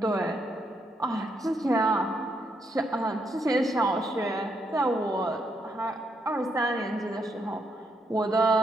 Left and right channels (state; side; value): normal; both; correlation 0.77